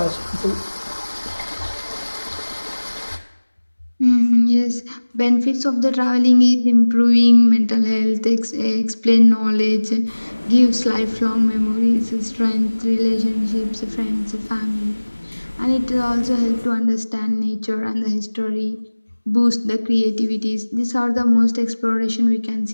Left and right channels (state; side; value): inverted; both; correlation -1.00